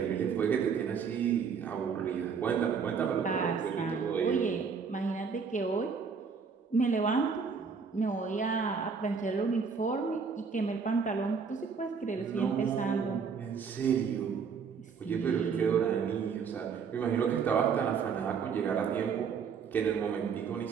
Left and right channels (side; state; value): left; quieter; 6.0 dB